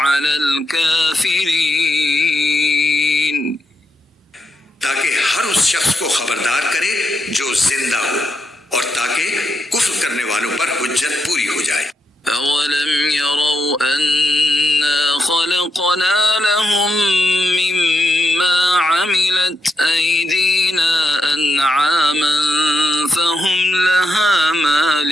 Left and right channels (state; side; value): normal; both; correlation 0.83